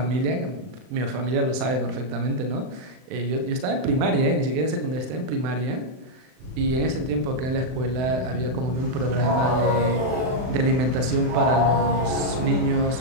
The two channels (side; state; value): left; late; 39 ms